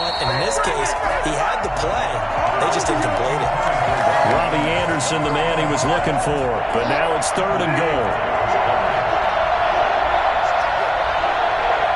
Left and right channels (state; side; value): identical; both; correlation 1.00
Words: And in this case, he had the play. They just didn't complete it. Robbie Anderson, the man he was looking for, but now it's 3rd and goal.